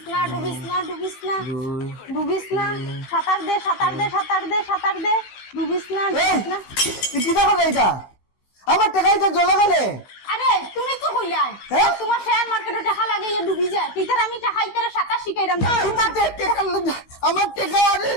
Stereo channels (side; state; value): right; late; 15 ms